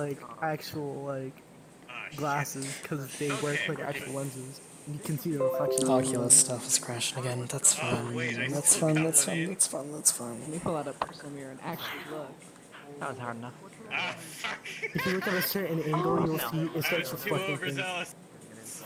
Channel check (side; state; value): both; identical; correlation 1.00